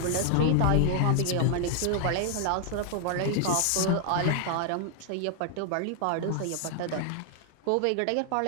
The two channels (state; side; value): different; both; correlation 0.00